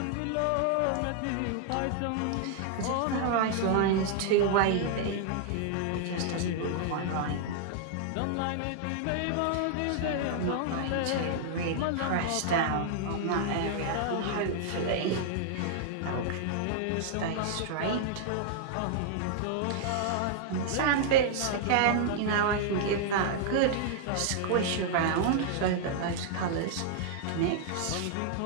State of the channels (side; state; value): both; different; correlation -0.01